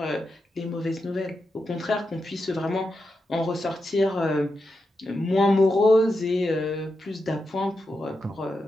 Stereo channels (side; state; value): both; normal; correlation 0.87